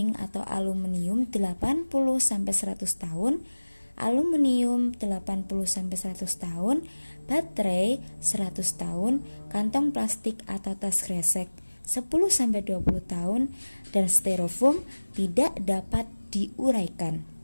atau aluminium 80-100 tahun, aluminium 80-100 tahun, baterai 100 tahun, kantong plastik atau tas kresek 10-20 tahun, dan styrofoam tidak dapat diuraikan.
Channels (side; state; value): both; inverted; correlation -1.00